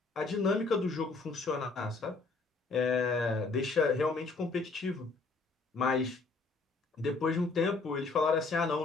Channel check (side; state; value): right; quieter; 3.9 dB